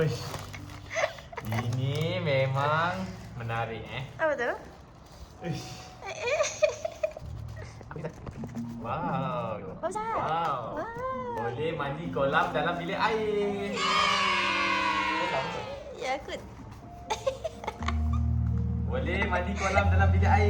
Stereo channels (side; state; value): both; identical; correlation 1.00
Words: Ini memang menarik Apa tu? Uish. Wow. Besar. Wow. Wow. Boleh mandi kolam dalam bilik air. Ya, aku. Boleh mandi kolam dalam bilik